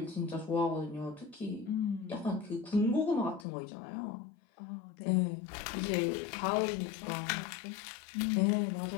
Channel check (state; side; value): drops out; right; at 3.5 s